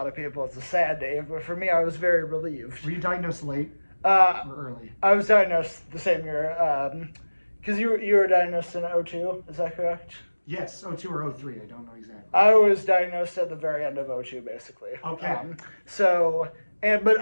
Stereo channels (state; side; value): inverted; both; correlation -1.00